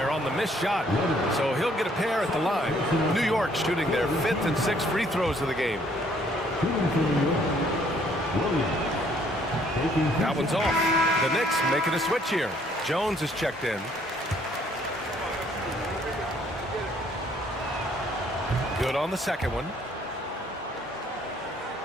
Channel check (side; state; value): both; normal; correlation 0.64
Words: on the missed shot. So he'll get a pair at the line. New York shooting their 5th and 6th free throws of the game. That one's off. The Knicks making a switch here. Jones is checked in. Good on the second one.